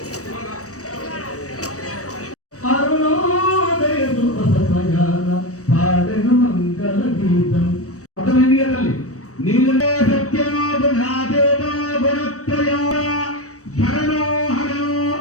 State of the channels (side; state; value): right; late; 0.65 ms